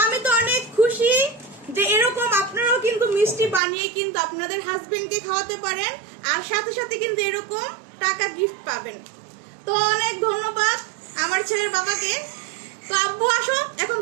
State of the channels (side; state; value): left; drops out; at 3.6 s